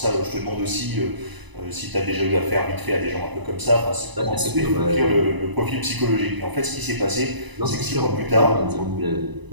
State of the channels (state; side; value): late; left; 1.0 ms